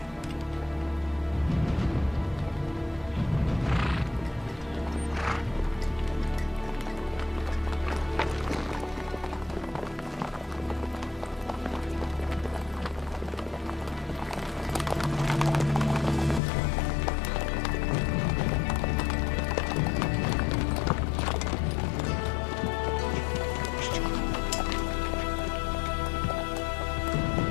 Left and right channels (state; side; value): drops out; right; at 16.4 s